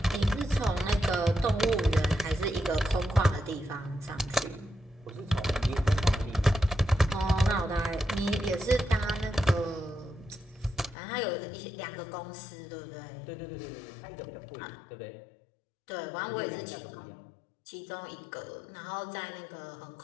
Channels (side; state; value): right; drops out; at 11.0 s